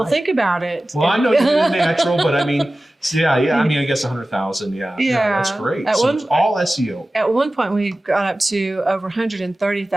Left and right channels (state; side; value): normal; both; correlation 0.96